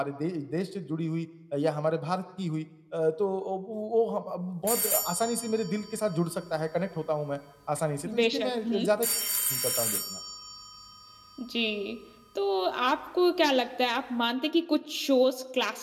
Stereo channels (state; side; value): identical; both; correlation 1.00